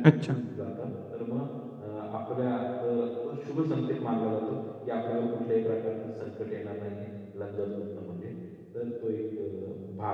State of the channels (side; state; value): both; identical; correlation 1.00